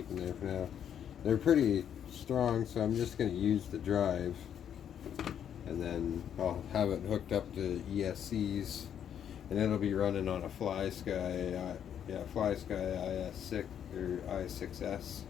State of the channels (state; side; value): quieter; right; 9.1 dB